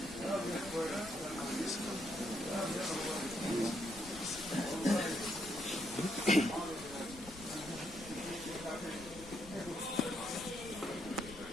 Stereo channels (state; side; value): noise; left; rumble, 16 dB below the sound